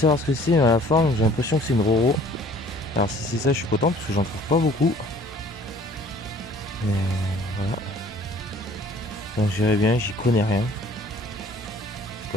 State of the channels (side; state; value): both; normal; correlation 0.53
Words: ce que c'est, mais à la fin, j'ai l'impression que c'est une Roro. Alors si c'est ça, je suis content parce que j'en trouve pas beaucoup. Mais voilà. Donc j'irai bien, j'y connais rien.